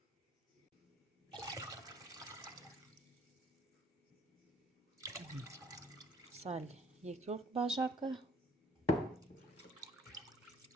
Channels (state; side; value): normal; both; correlation 0.59